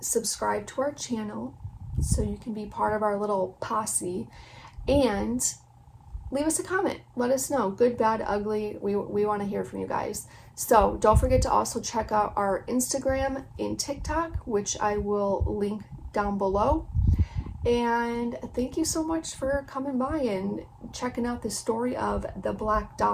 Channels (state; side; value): identical; both; correlation 1.00